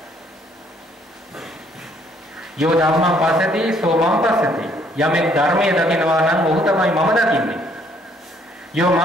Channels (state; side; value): normal; both; correlation 0.65